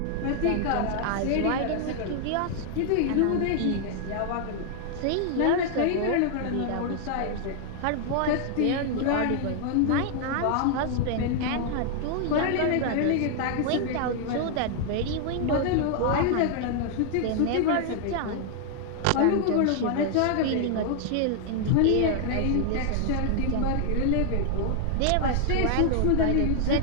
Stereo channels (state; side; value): different; both; correlation 0.00